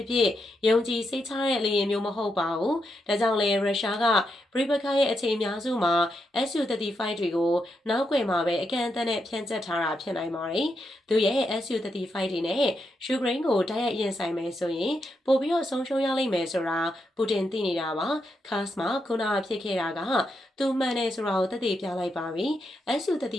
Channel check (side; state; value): both; normal; correlation 0.83